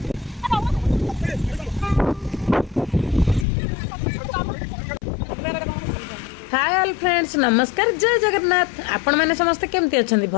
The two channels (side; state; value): right; drops out; at 3.5 s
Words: हाय ऑल फ्रेंड्स नमस्कार जय जगन्नाथ आपण मैंने समस्ते केमती अच्छा